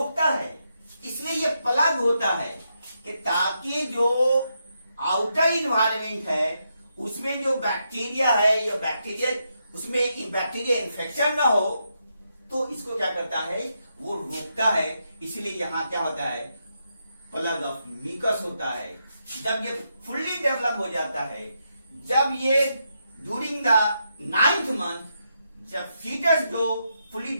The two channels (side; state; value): both; inverted; correlation -0.82